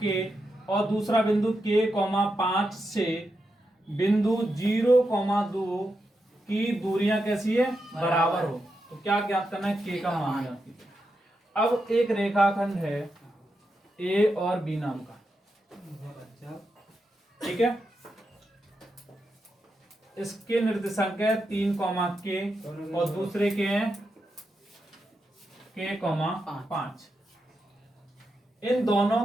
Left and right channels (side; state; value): both; normal; correlation 0.86